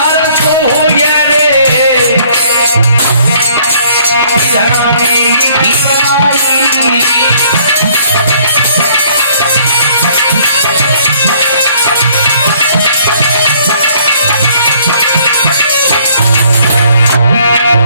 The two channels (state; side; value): inverted; both; correlation -0.61